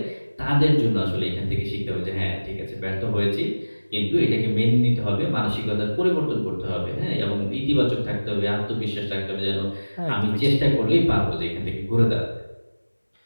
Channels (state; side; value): inverted; both; correlation -1.00